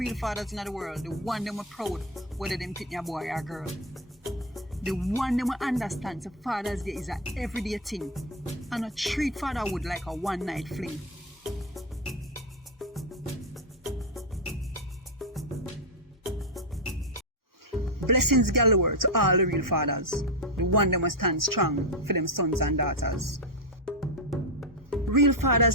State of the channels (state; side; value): normal; both; correlation 0.07